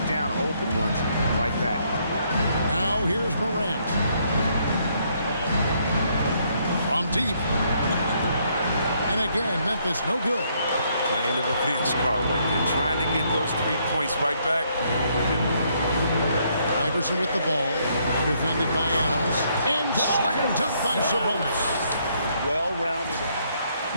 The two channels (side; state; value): both; inverted; correlation -0.71